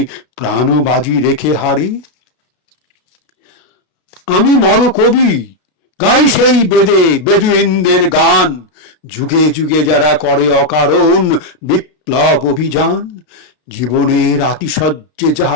প্রাণ বাজি রেখে হারে। আমি মর কবি, গাই সেই বেদে বেদুইনদের গান, যুগে যুগে যারা করে অকারণ বিপ্লব অভিযান। জীবনের আতিশয্যে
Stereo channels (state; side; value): late; right; 32 ms